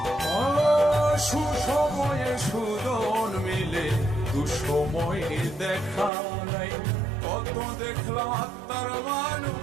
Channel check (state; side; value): drops out; left; at 6.1 s